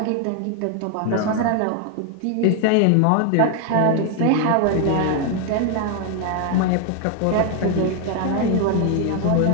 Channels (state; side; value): different; both; correlation 0.00